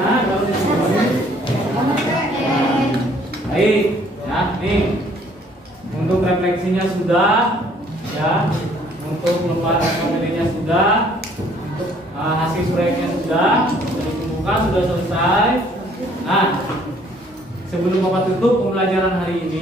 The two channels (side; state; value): both; normal; correlation 0.61